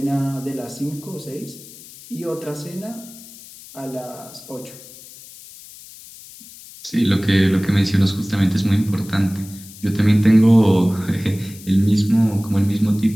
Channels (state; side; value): noise; left; hiss, 19 dB below the sound